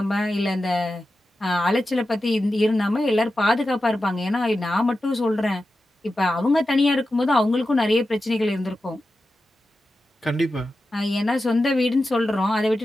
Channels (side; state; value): both; normal; correlation 0.92